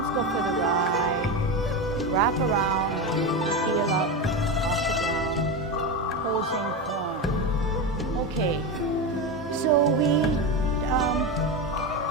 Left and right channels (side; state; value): both; normal; correlation 0.17